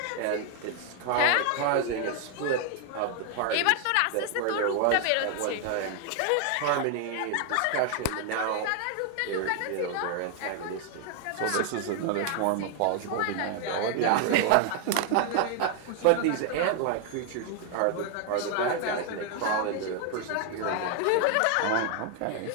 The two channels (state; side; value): different; both; correlation 0.00